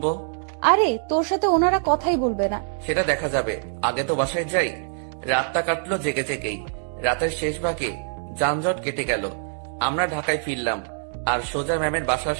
আরে তোর সাথে ওনারা কথাই বলবে না। সেটা দেখা যাবে, আগে তো বাসায় যাই। রাতটা কাটলো জেগে জেগেই। রাতের শেষ ভাগে যানজট কেটে গেল। আমরা ঢাকায় ফিরলাম আর সোজা ম্যামের বাসার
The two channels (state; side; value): silent; left; digital silence